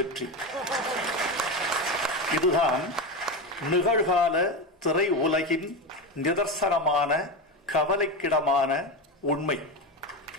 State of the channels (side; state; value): both; normal; correlation 0.18